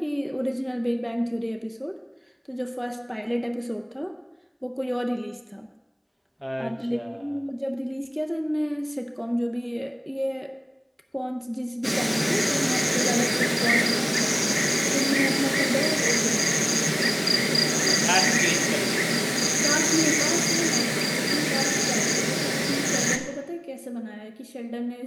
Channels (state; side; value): identical; both; correlation 1.00